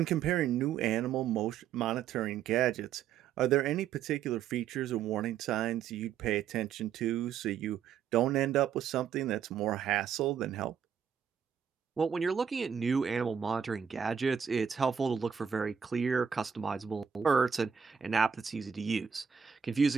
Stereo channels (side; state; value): left; quieter; 7.7 dB